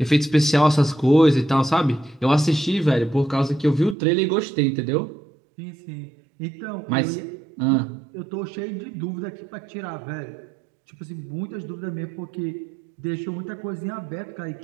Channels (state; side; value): drops out; left; at 4.0 s